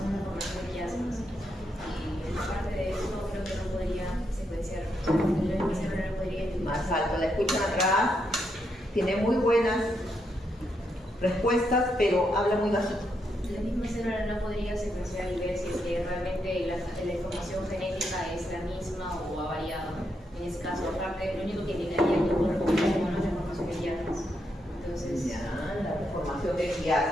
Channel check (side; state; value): both; normal; correlation 0.80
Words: formación de quiasmas. Y aparte de eso, creo que no podría secuenciar. El cerebro no podría identificar. Más alto, la escuchan atrás, tiene muy buenas respuestas, pero habla muy bajito. La misma célula no podría secuenciar y ver si es que realmente la información genética es la misma o ha variado. En ese caso, aparte, lo único que indicaría que el cuerpo es la formación de quiasmas. Entonces, Ya, la formación de